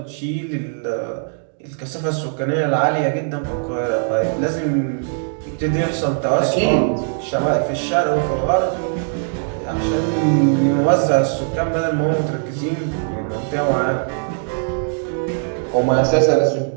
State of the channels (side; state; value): left; silent; digital silence